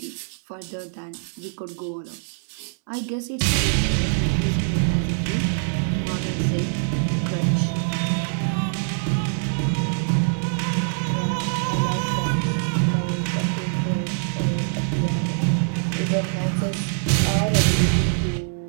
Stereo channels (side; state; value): left; silent; digital silence